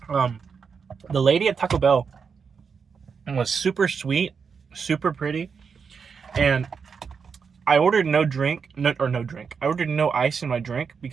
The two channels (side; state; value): left; quieter; 5.9 dB